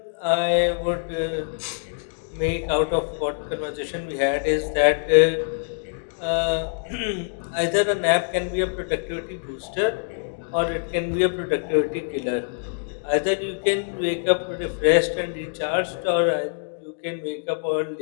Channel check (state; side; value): silent; right; digital silence